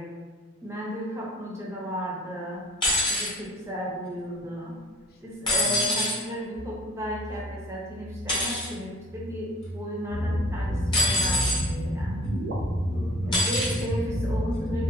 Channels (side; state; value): both; normal; correlation 0.51